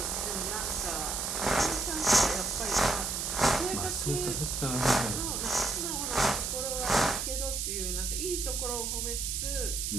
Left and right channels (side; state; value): right; noise; hiss, 1 dB below the sound